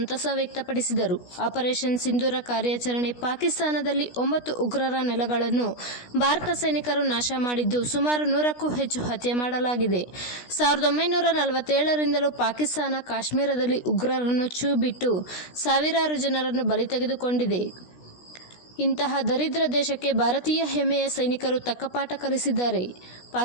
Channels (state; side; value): late; right; 16 ms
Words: ವ್ಯಕ್ತಪಡಿಸಿದರು. ಆಪರೇಷನ್ ಸಿಂಧೂರ ಕಾರ್ಯಾಚರಣೆ ಪಾಕಿಸ್ತಾನದಲ್ಲಿ 9 ಉಗ್ರರ ನೆಲೆಗಳನ್ನು ಭಾರತ ಸೈನಿಕರು ನಾಶ ಮಾಡಿದ್ದು, ಸುಮಾರು 100ಕ್ಕೂ ಹೆಚ್ಚು ಹತ್ಯೆ ಮಾಡಲಾಗಿದೆ. 1947ರಿಂದಲೂ ಪಾಕಿಸ್ತಾನ ಕಾಶ್ಮೀರದಲ್ಲಿ ಉಗ್ರರನ್ನು ಛೂ ಬಿಟ್ಟು ಸಾವಿರಾರು ಜನರನ್ನು ಬಲಿ ತೆಗೆದುಕೊಂಡಿದೆ. ಇಂತಹ ದರಿದ್ರ ದೇಶಕ್ಕೆ ಭಾರತೀಯ ಹೆಮ್ಮೆಯ ಸೈನಿಕರು ತಕ್ಕ ಪಾಠ ಕಲಿಸಿದ್ದಾರೆ.